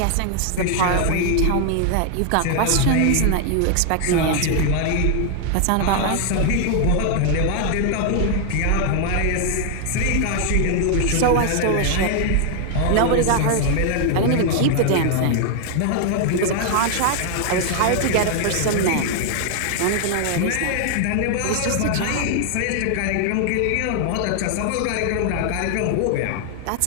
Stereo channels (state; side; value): different; both; correlation 0.00